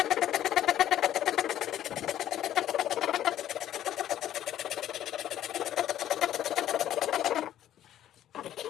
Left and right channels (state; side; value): quieter; right; 11.9 dB